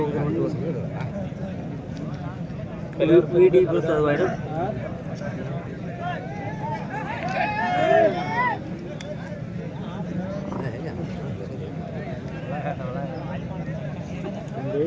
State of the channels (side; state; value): both; identical; correlation 1.00